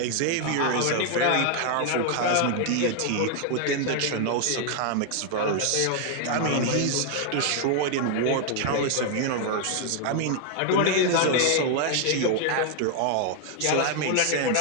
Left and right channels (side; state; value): both; different; correlation 0.00